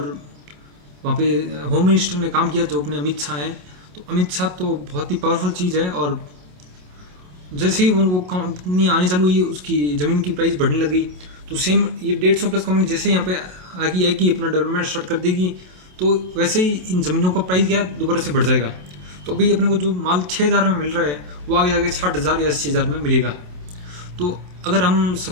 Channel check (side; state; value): left; late; 27 ms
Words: वहाँ पे होम मिनिस्टर ने काम किया जो अपने अमित शाह हैं। तो अमित शाह तो बहुत ही पावरफुल चीज़ है। और जैसे ही वो कंपनी आने चालू हुई, उसकी ज़मीन की प्राइस बढ़ने लगी, तो सेम ये 150 प्लस कंपनी जैसे यहाँ पे आगे आएगी, अपना डेवलपमेंट स्टार्ट कर देगी, तो वैसे ही इन ज़मीनों का प्राइस क्या दोबारा से बढ़ जाएगा। तो अभी अपने को जो माल 6,000 में मिल रहा है वो आगे जाके 60,000 या 80,000 में मिलेगा। तो अगर हम